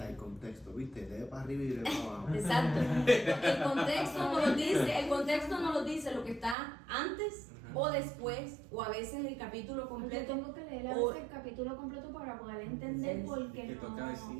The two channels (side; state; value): left; drops out; at 6.6 s